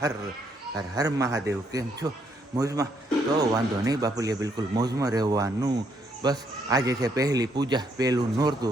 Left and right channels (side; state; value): both; normal; correlation 0.72